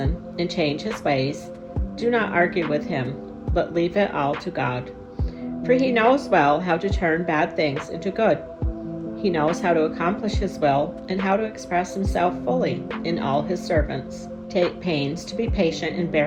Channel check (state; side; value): identical; both; correlation 1.00